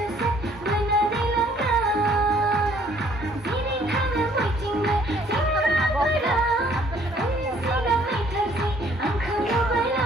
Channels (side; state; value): both; normal; correlation 0.61